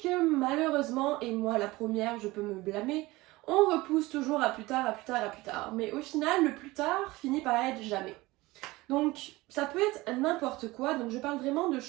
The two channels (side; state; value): left; quieter; 20.4 dB